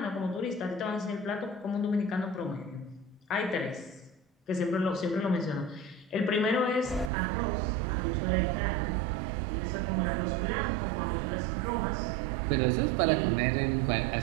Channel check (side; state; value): left; drops out; at 7.1 s